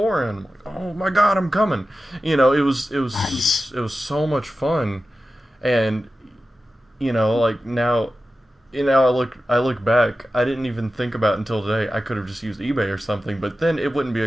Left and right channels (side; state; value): both; normal; correlation 0.93